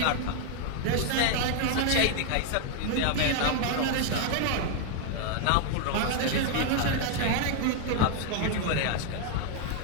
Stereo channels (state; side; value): different; both; correlation 0.00